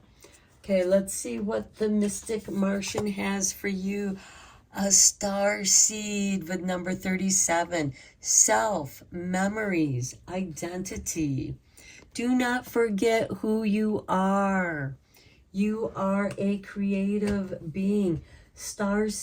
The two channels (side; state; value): both; identical; correlation 1.00